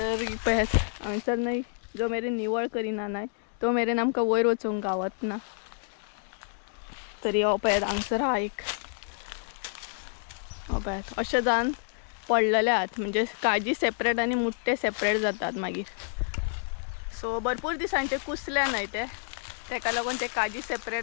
पळयात हांगसर न्हय जो मेरेन निवळ करिना न्हय तो मेरेन आमकां वयर वचूंक गावत ना. तरी हो पळयात हांगसर हा एक पळयात अशें जावन पडलेले आहात. म्हणजे काजी सेपरेट आनी मुट्टे सेपरेट जातात मागीर. सो भरपूर दिसांचे कुसले न्हय ते तेका लागून ते काजी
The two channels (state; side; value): silent; right; 59 dB below the other